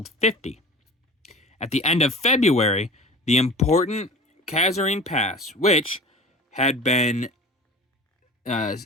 50. At the end of February, the important Kasserine Pass, which had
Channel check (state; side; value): normal; both; correlation 0.38